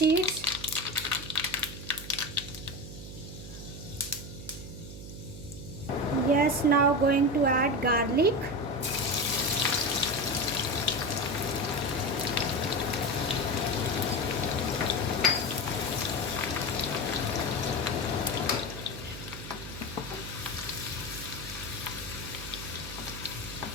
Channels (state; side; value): noise; right; hum, 11 dB below the sound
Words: yes, now going to add garlic,